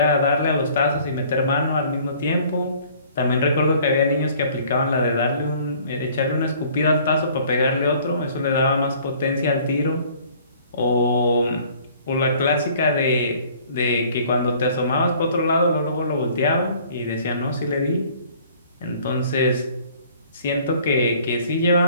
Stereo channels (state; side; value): inverted; both; correlation -0.55